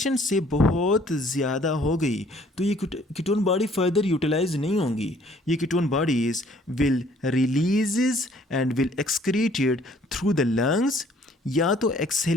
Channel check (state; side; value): normal; both; correlation 0.59